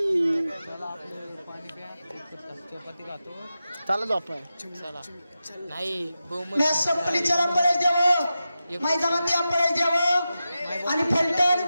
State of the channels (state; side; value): inverted; both; correlation -0.92